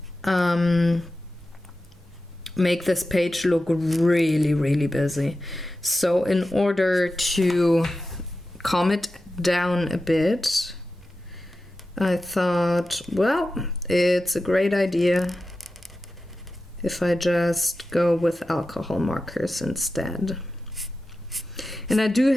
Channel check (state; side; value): normal; both; correlation 0.92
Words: make this page look really, really busy. So in order to calm it down a bit, I thought, well, it's a great idea if I just go with alcohol markers instead. And I do